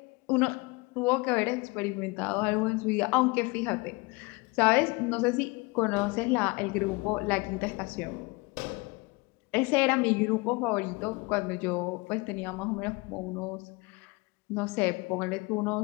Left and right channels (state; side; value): quieter; right; 26.0 dB